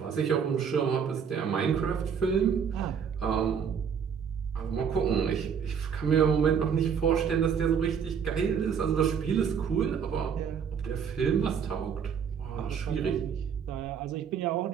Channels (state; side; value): quieter; left; 7.1 dB